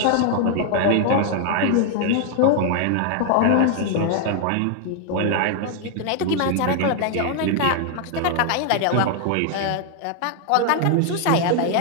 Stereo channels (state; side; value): different; both; correlation 0.00